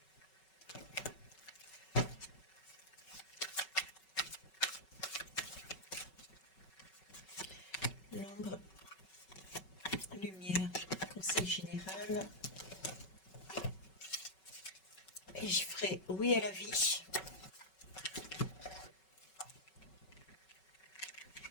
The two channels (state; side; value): late; right; 5.3 ms